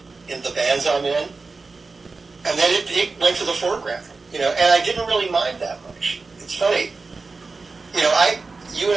in the bands I'm in. And then it went to the foreground, and I didn't really mind that much. It's funny. You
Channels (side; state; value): left; quieter; 4.0 dB